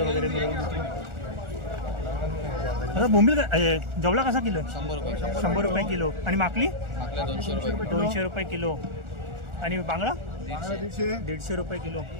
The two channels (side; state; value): left; late; 1.4 ms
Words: वगैरे मिळून. आता बोंबील जवळा कसा किलो? 100 रुपये. 100 रुपये किलो. आणि माकली? आपल्या 200 रुपये. 200 रुपये किलो. आणि बांगडा 150. 150 रुपये किलो.